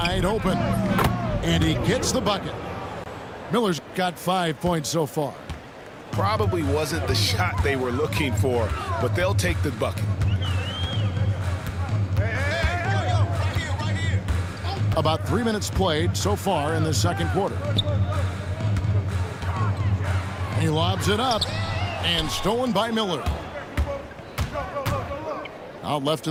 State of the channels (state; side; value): identical; both; correlation 1.00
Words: open. And he gets the bucket. Miller's got 5 points so far. Probably wasn't the shot they were looking for, but they'll take the bucket. About 3 minutes played so far in the second quarter. He lobs it up and stolen by Miller. Out left